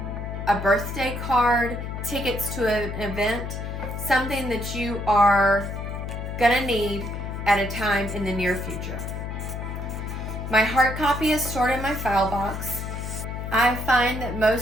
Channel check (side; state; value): left; noise; hum, 6 dB below the sound